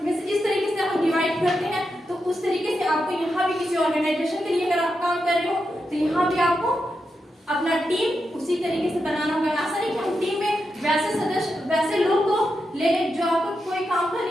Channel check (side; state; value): both; normal; correlation 0.87